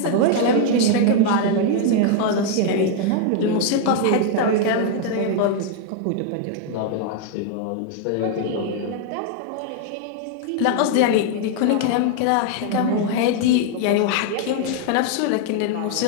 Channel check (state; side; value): different; both; correlation 0.00